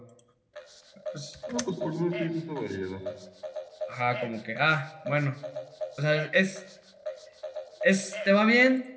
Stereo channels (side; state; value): both; identical; correlation 1.00